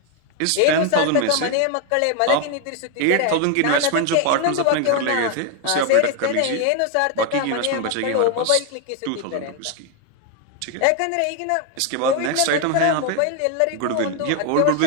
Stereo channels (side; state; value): both; different; correlation 0.01